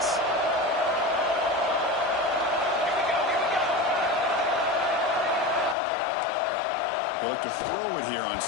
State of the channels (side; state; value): right; drops out; at 5.8 s